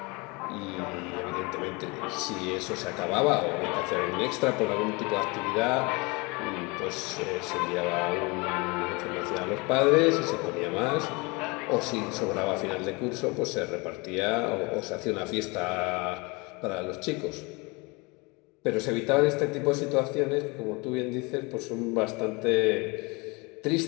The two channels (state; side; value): quieter; right; 27.2 dB